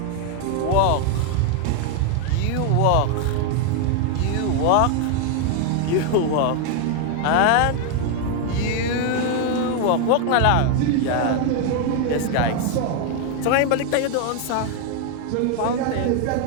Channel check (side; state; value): both; different; correlation 0.01